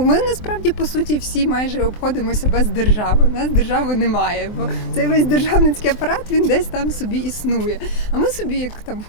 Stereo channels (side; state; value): right; late; 23 ms